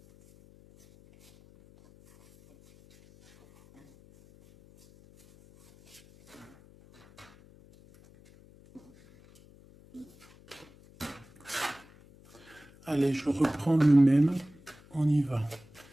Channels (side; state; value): left; noise; hum, 26 dB below the sound